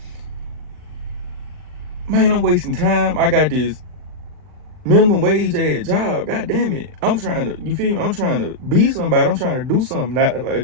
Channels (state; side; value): late; left; 39 ms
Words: man, I'm wasting time. I got this minimum wage ass job. God damn it. I'm trying to, you feel me? I'm trying to be somebody. I'm trying to do something. Not,